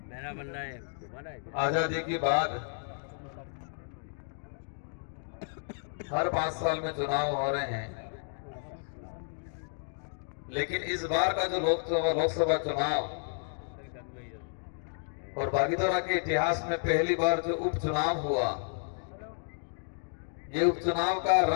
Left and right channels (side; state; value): right; silent; digital silence